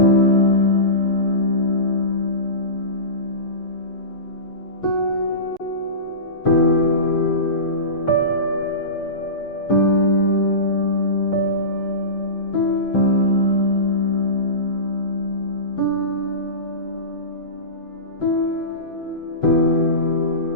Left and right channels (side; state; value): right; late; 6.7 ms